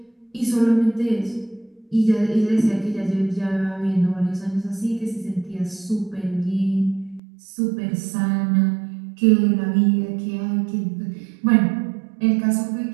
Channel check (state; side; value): drops out; left; at 7.2 s